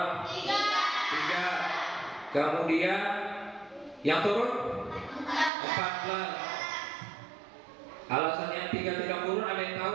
3. Kemudian yang turun 14. Alasan yang 3 tidak turun ada yang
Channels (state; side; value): drops out; left; at 5.5 s